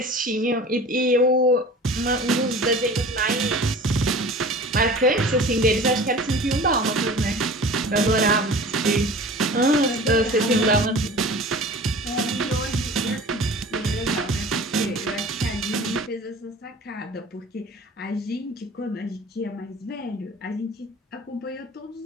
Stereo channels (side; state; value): both; normal; correlation 0.40